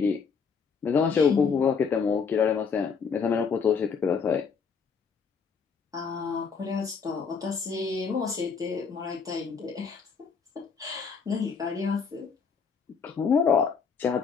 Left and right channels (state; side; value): quieter; right; 5.8 dB